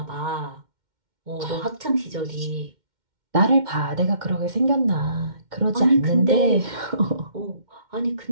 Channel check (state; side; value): late; left; 2.1 ms